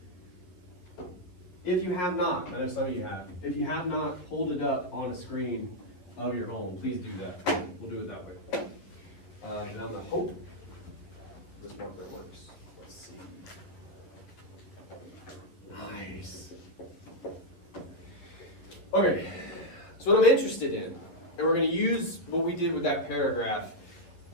If you have not, I know some of you have, if you have not pulled it up on a screen of your home, please do that. We'll do it that way. And I'm going to hope this marker works. Let's see. Nice. Okay, so what I'm interested in, and we're going to use what we did with that paragraph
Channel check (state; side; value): late; right; 11 ms